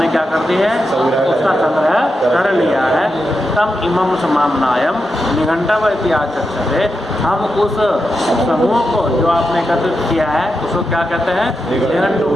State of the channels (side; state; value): both; normal; correlation 0.87